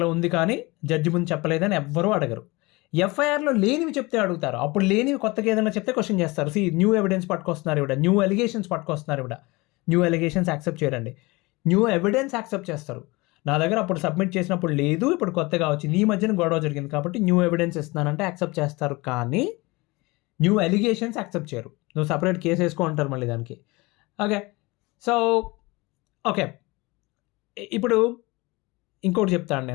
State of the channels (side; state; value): right; quieter; 23.7 dB